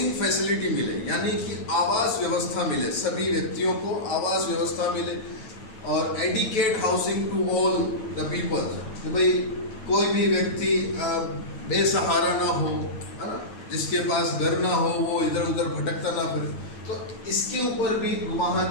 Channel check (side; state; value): right; late; 9.0 ms